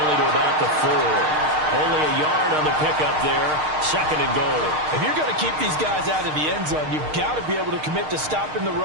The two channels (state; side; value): late; left; 6.5 ms